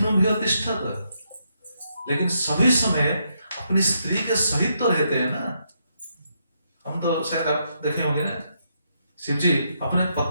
भूय तिष्ठत। लेकिन सभी समय अपनी स्त्री के सहित तो रहते हैं ना। हम तो शायद आप देखे होंगे ना, शिव जी अपने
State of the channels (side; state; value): both; inverted; correlation -0.78